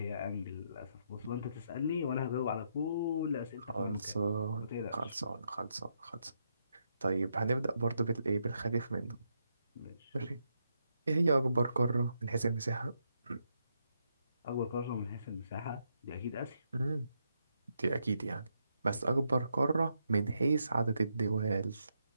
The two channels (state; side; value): inverted; both; correlation -0.80